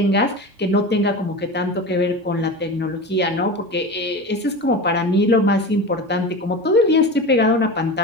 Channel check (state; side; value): normal; both; correlation 0.29